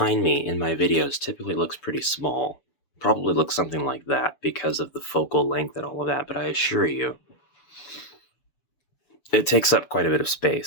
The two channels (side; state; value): right; late; 6.9 ms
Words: me in my videos typically looks pretty small. Probably looks something like that because of the focal length and all of that, but I assure you, it takes up quite a bit of